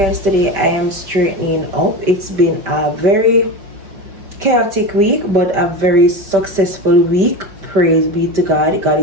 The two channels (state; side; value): late; left; 5.2 ms